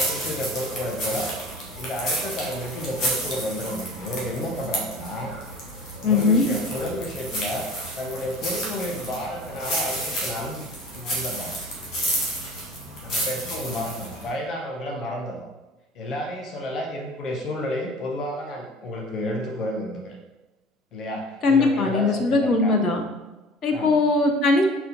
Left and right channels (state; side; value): normal; both; correlation 0.43